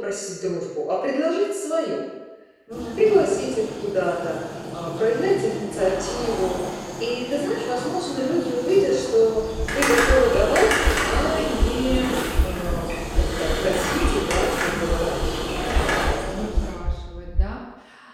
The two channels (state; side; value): identical; both; correlation 1.00